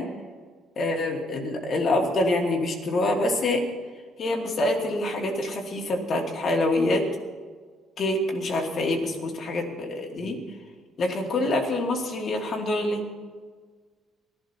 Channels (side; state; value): both; normal; correlation 0.69